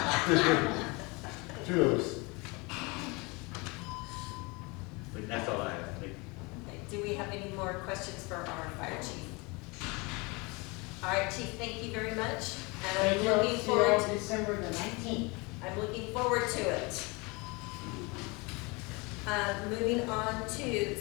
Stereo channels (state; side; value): quieter; right; 27.2 dB